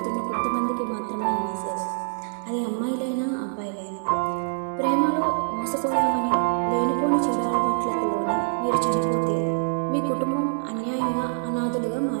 కొంతమందికి మాత్రమే ఈ మెసేజ్. అది అమ్మాయిలైనా అబ్బాయిలైనా. ప్రేమలో మోసపోయామని లేనిపోని చెడు అలవాట్లకు లోనే మీరు చనిపోతే మీ కుటుంబం అన్యాయంగా అనాథులుగా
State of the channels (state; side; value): silent; left; digital silence